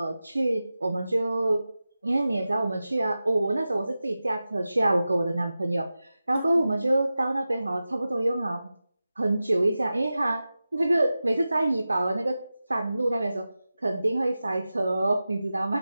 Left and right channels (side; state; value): both; inverted; correlation -0.94